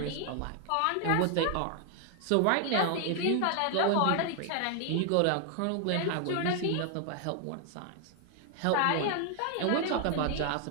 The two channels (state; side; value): different; both; correlation 0.00